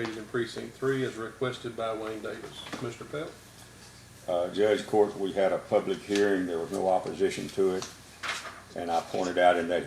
in Precinct 3 as requested by Wayne Davis. Commissioner Pelt? Judge, court, we had a public hearing, there was no opposition to it. And I pointed out in that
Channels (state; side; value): identical; both; correlation 1.00